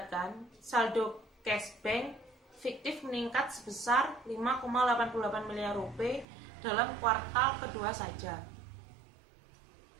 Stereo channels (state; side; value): drops out; left; at 6.2 s